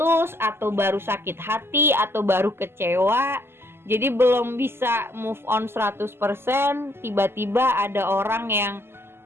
atau baru sakit hati, atau baru kecewa, jadi belum bisa move on 100%. Tiba-tiba ada orang yang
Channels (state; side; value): late; left; 0.12 ms